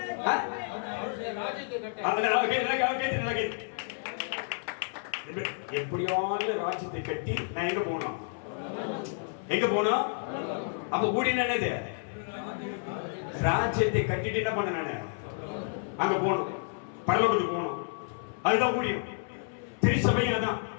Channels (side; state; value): right; silent; 58 dB below the other